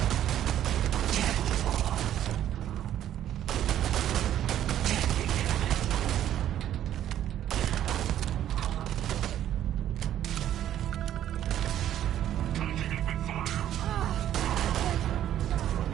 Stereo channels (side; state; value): left; quieter; 11.4 dB